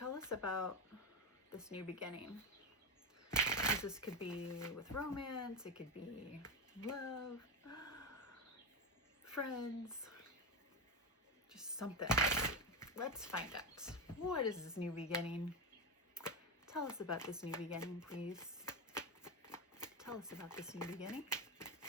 us about this new beginning? Because this could be with romance, it could be love, friends, just something. Let's find out. What is this new beginning? Tell us about this new beginning, please. Tell us about this new beginning.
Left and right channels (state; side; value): normal; both; correlation 0.13